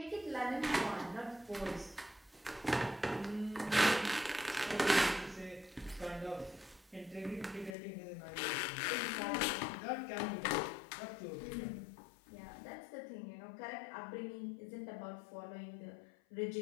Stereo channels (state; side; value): drops out; right; at 7.8 s